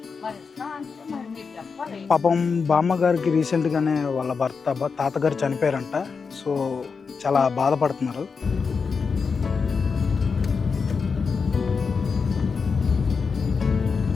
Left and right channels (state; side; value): quieter; right; 5.3 dB